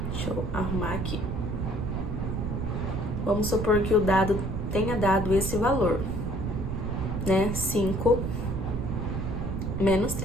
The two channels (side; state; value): right; noise; rumble, 2 dB below the sound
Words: Deixa eu arrumar aqui. Vamos supor que o dado tenha dado esse valor, né? 5 menos